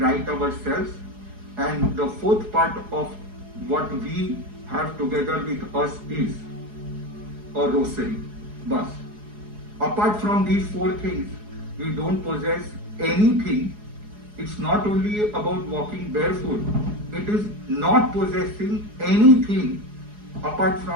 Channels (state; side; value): late; left; 4.8 ms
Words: ourselves. And the fourth part of what we have together with us is a rosary. Bus. Apart from these four things, we don't possess anything. It's not only about walking barefoot, it is not possessing anything apart